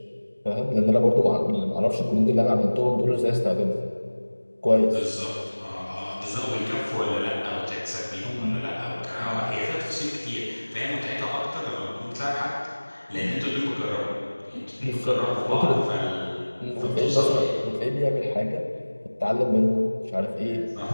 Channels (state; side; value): inverted; both; correlation -1.00